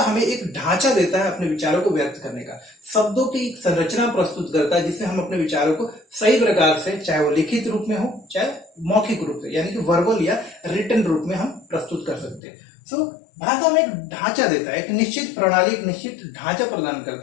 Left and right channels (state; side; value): drops out; right; at 12.4 s